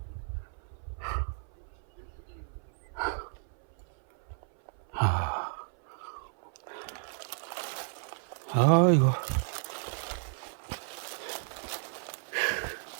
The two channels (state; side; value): silent; left; 56 dB below the other